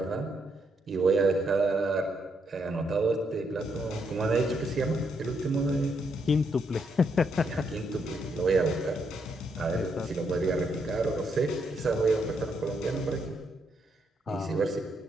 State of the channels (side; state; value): both; normal; correlation 0.77